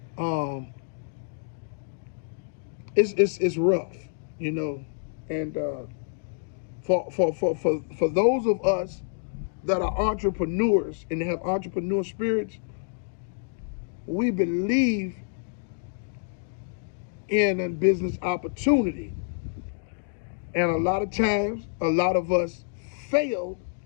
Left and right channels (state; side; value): silent; right; digital silence